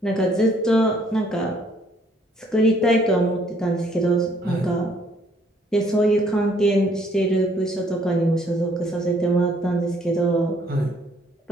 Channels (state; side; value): normal; both; correlation 0.64